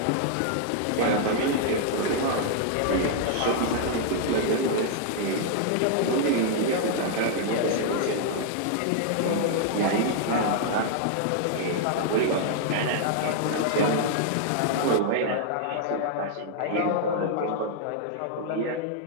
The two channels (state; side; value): different; both; correlation -0.01